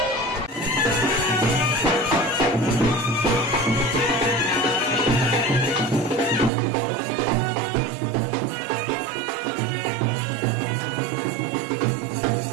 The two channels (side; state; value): left; drops out; at 6.5 s